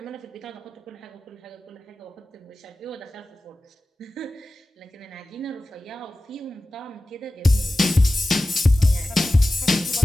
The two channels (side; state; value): both; normal; correlation 0.96